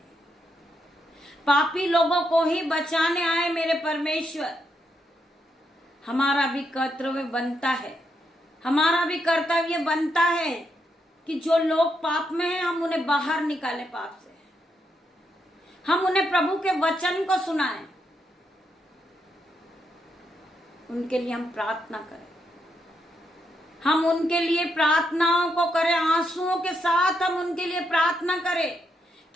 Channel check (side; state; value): both; normal; correlation 0.80